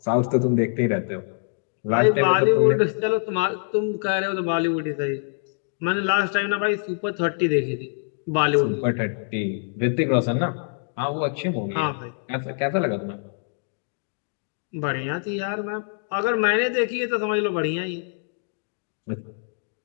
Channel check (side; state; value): right; silent; 62 dB below the other